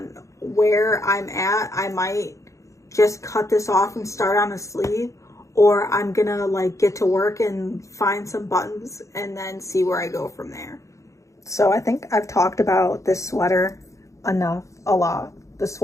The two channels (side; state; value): right; late; 0.15 ms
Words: where I'm at, I might just cut this off and start on a sleeve, or I'm gonna like get to work and find some buttons and then see where I go from there. So I think I've talked about this sweater enough, a lot. The